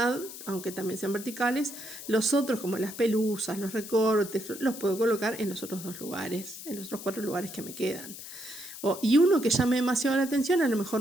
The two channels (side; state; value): left; noise; hiss, 12 dB below the sound